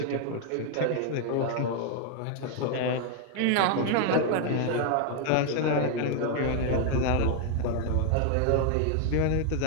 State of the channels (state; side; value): different; both; correlation 0.00